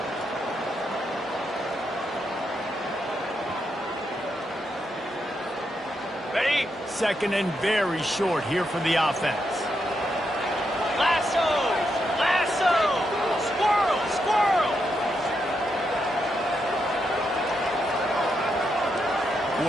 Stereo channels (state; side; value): normal; both; correlation 0.82